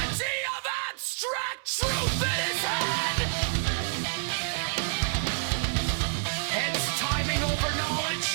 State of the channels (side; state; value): left; silent; 59 dB below the other